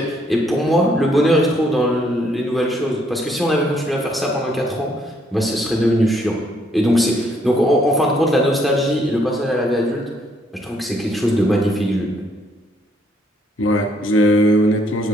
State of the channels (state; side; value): normal; both; correlation 0.69